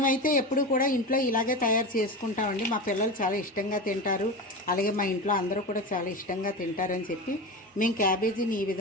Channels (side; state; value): both; normal; correlation 0.24